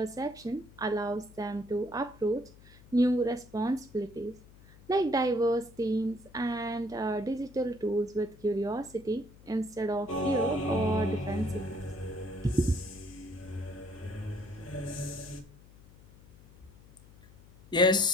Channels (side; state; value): left; noise; hum, 23 dB below the sound